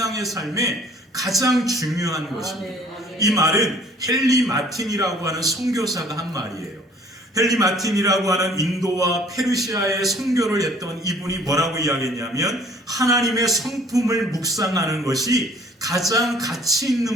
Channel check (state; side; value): normal; both; correlation 0.55